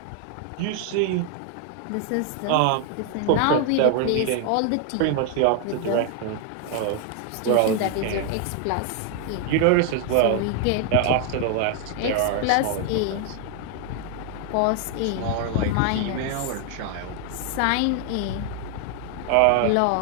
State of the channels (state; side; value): different; both; correlation 0.00